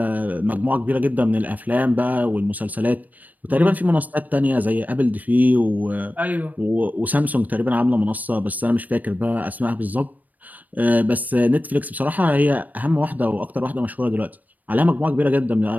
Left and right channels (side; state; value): left; late; 0.080 ms